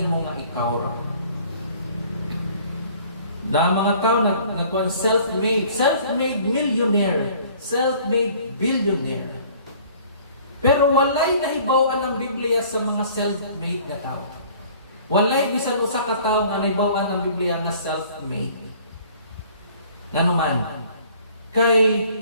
nga ikaw ra. Na mga tao nagkuan self-made millionaire, self-made billionaire. Pero walay nahibaw-an ang Biblia sa mga self-made na tao. Walay bisan usa ka tawo nga nahibaw-an ang Biblia nga self-made. Nganuman, kay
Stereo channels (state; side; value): inverted; both; correlation -0.53